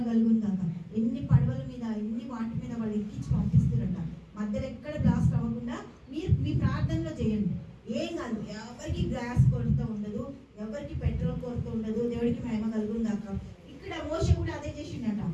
కలుగును కాక. ఎన్ని పడవల మీద ఎన్ని వాటి మీద వాళ్ళు ఎక్కించి పంపిస్తారంట. మధ్యలో ఎక్కడ బ్లాస్ట్ అవ్వకుండా మీరు మీ ప్రార్థనలో చేయండి. ఏం కాదు, ఎవరికి గ్యాస్ కొరత ఉండదు, ఎవరికి పెట్రోల్ కొరత ఉండదు. దేవుడికి మహిమ కలుగును కాక. ఇక్కడ మోషే కూడా అదే చేసిండట,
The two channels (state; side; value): identical; both; correlation 1.00